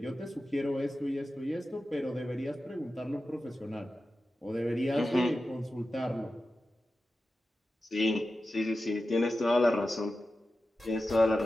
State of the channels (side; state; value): both; normal; correlation 0.93